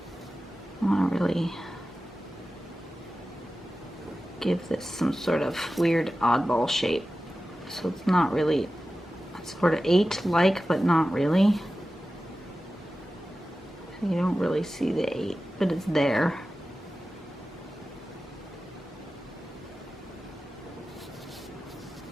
want to really give this some sort of weird oddball shape. So it's not really, it's sort of 8-like, but not really. You don't really see the 8, but it's there.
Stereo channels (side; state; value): both; normal; correlation 0.94